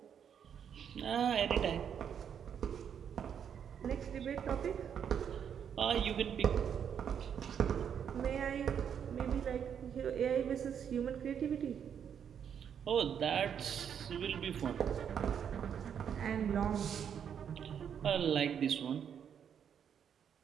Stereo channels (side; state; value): left; quieter; 8.2 dB